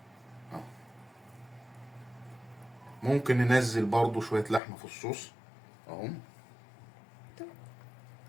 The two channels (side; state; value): right; drops out; at 4.6 s